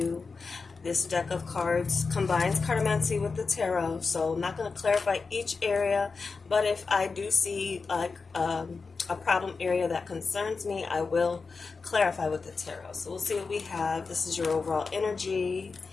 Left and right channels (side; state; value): right; quieter; 4.5 dB